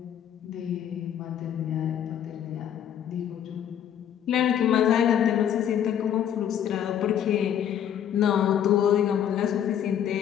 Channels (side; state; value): right; quieter; 9.7 dB